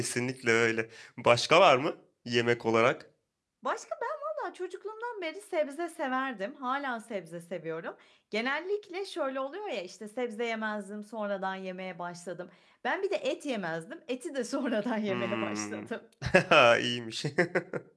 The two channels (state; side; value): identical; both; correlation 1.00